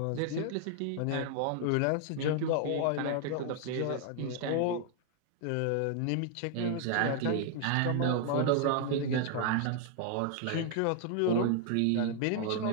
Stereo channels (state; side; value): different; both; correlation 0.00